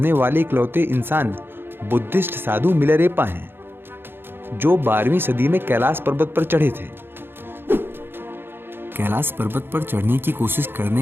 वाले इकलौते इंसान बुद्धिस्ट साधु मिलारेपा हैं, जो 12वीं सदी में कैलाश पर्वत पर चढ़े थे। कैलाश पर्वत पर चढ़ने की कोशिश करने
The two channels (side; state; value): left; late; 0.10 ms